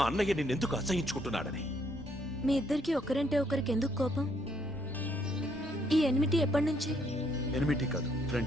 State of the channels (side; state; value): both; normal; correlation 0.70